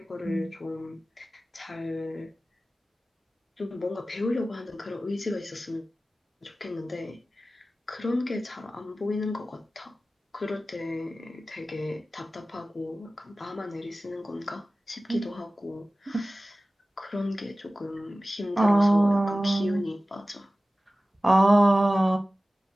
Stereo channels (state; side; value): normal; both; correlation 0.96